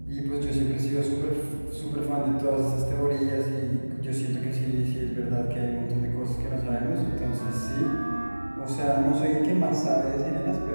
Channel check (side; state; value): both; inverted; correlation -1.00